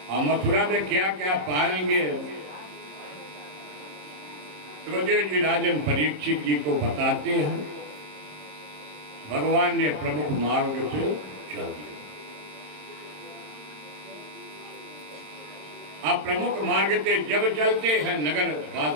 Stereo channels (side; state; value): left; late; 27 ms